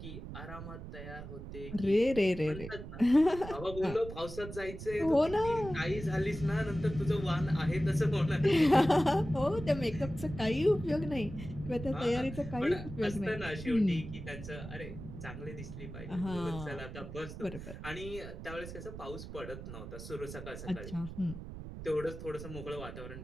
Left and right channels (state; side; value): noise; right; rumble, 10 dB below the sound